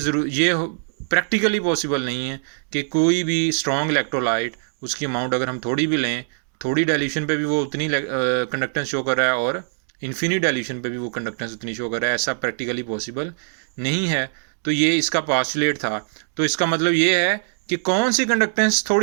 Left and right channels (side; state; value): left; silent; digital silence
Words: प्रैक्टिकली पॉसिबल नहीं है कि कोई भी स्ट्रॉन्ग इलेक्ट्रोलाइट उसकी अमाउंट अगर हम थोड़ी भी लें, थोड़ी डाइल्यूशन पे भी वो उतनी कंडक्टेंस शो कर रहा है और इन्फिनिट डाइल्यूशन पे भी वो कंडक्टेंस उतनी शो कर रहा है, ऐसा प्रैक्टिकली पॉसिबल नहीं है। तो ये इसका पॉस्टुलेट था। तो इसका मतलब ये है कि कौन सी कंडक्टेंस